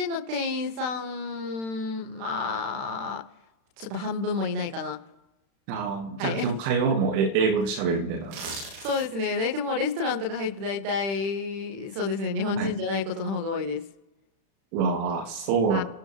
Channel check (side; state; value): left; late; 36 ms